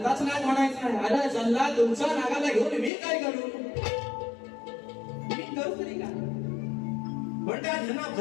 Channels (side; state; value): right; drops out; at 2.9 s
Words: नाग म्हणायचा आहे. अरे चल्ला तुमचा नागाला घेऊन मी काय करू, मी करू तरी का. म्हणतात ह्यांना